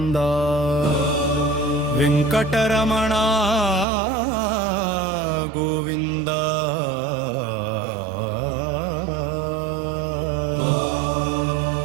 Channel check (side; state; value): left; drops out; at 3.9 s